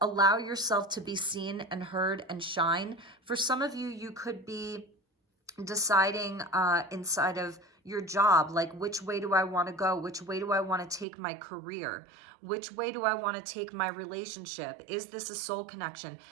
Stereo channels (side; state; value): left; drops out; at 11.1 s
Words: allow yourself to be seen and heard and shine. For some of you, you could be deciding inside of your job, like which way do I want to go? Which way do I want to take my career? Which way do I want to take my relationship? Is this a soul connection?